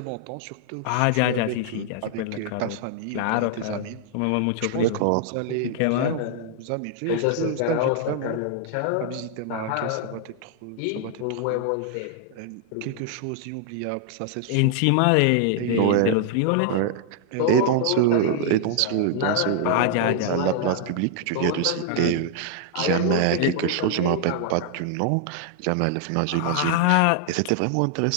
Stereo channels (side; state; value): both; different; correlation -0.01